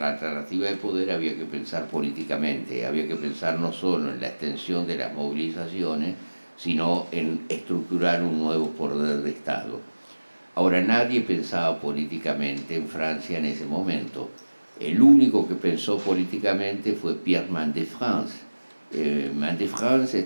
alternativa de poder había que pensar políticamente, había que pensar no solo en la extensión de las movilizaciones, sino en estructurar un nuevo poder de Estado. Ahora, nadie pensaba políticamente en Francia en ese momento. El único que pensó políticamente fue Pierre Mendès France. Mendès France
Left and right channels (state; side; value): inverted; both; correlation -1.00